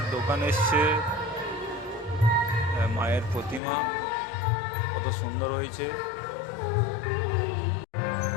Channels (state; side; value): drops out; right; at 3.6 s